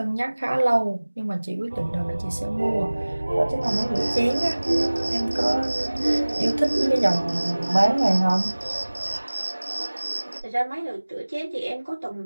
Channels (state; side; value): inverted; both; correlation -1.00